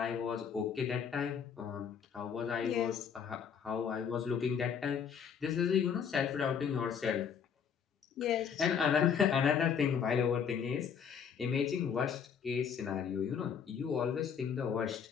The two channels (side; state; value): right; quieter; 7.2 dB